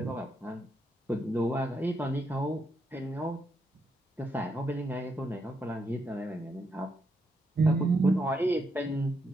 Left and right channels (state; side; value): normal; both; correlation 0.80